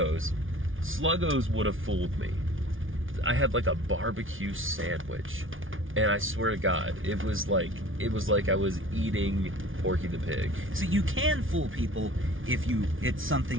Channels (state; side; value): late; left; 0.58 ms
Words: would have fooled me. I had like a barbecue sandwich, and I swear to God, it was like I was eating Porky the Pig. So you can fool people if it's